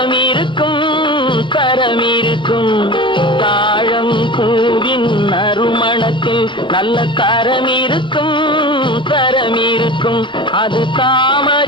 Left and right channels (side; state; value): right; late; 0.23 ms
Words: இருக்கும் தரம் இருக்கும். தாழம் பூவின் நறுமணத்தில் நல்ல தரம் இருக்கும் தரம் இருக்கும். அது